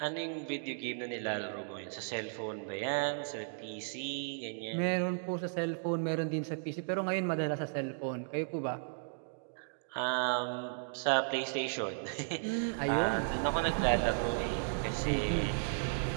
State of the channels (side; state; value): left; silent; digital silence